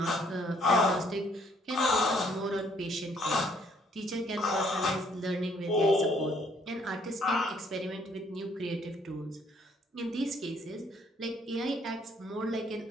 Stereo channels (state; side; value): normal; both; correlation 0.65